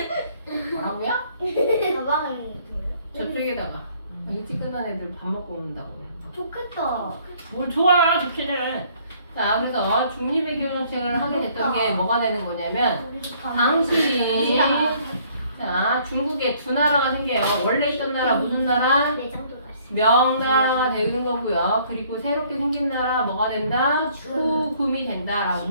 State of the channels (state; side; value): inverted; both; correlation -0.61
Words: 뭐라고요? 가방을 들어요. 저쪽에다가 일찍 끝난 애들 밥 먹고 온다고 그래. 좋겠다. 뭘 좋아, 좋기는. 자, 그래서 중립의 교정책을 하게 됐던 게 뭐가 되는 거냐면 당시 자, 중국에 두 나라가 생겨요. 원래 있던 나라 무슨 나라? 내장도 갔어. 명나라가 되는 거고요. 그리고 새롭게 생긴 나라 뭐가 된다? 후금이 된다라고